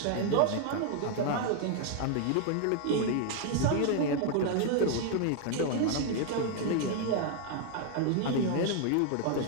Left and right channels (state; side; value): different; both; correlation 0.00